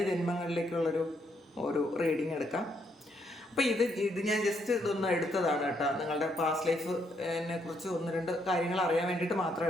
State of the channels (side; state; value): both; normal; correlation 0.74